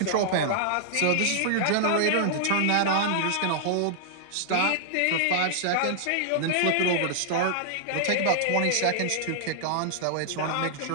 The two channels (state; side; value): different; both; correlation -0.01